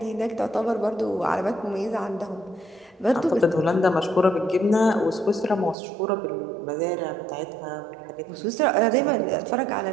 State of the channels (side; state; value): left; drops out; at 5.8 s